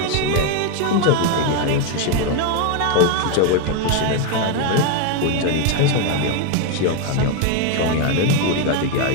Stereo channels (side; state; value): both; different; correlation 0.01